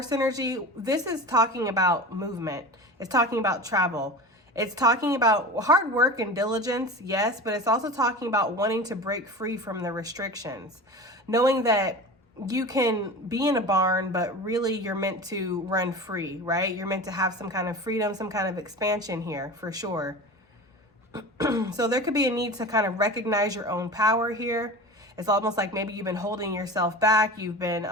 energy, this is talking about movement. It's talking about travel. It's talking about hard work and diligence, yes, but it's also talking about wanting to break free from the restrictions. Knowing that you can be in a barn, but really you're meant to run free, right? You're meant to have some kind of freedom, some kind of expansion here, for sure. So there could be a need to kind of recognize your own power here. It's almost like maybe you've been holding yourself back. You've been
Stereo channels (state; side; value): normal; both; correlation 0.32